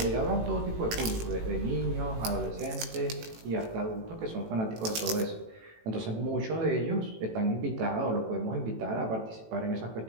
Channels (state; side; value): late; left; 18 ms